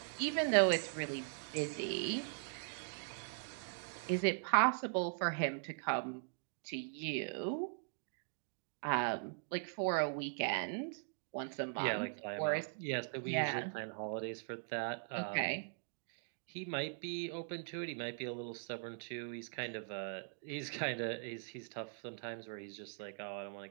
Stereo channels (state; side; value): silent; left; digital silence